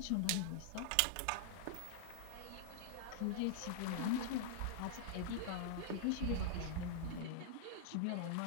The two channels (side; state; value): both; different; correlation -0.01